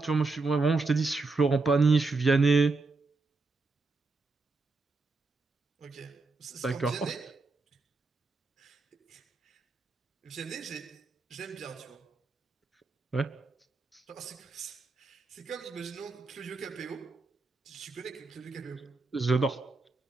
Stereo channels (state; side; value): quieter; left; 3.8 dB